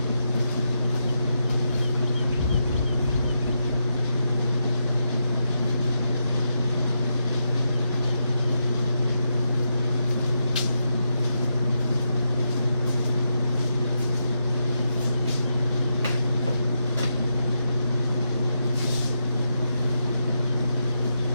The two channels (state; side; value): inverted; both; correlation -0.84